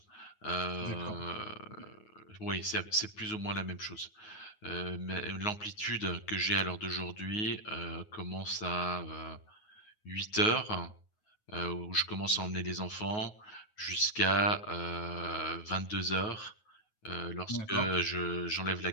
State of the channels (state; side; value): late; right; 9.5 ms